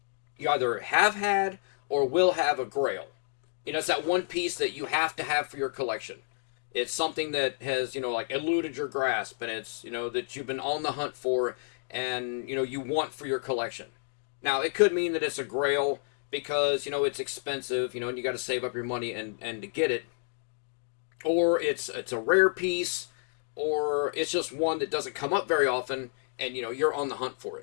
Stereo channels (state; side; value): silent; right; digital silence